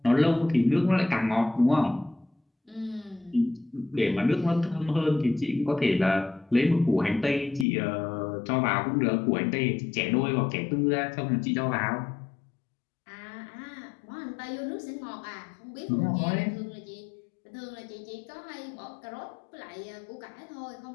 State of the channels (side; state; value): right; drops out; at 7.7 s